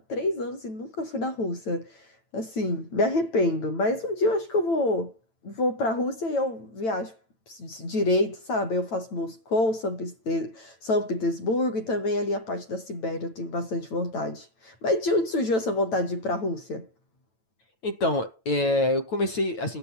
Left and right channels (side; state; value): right; late; 9.0 ms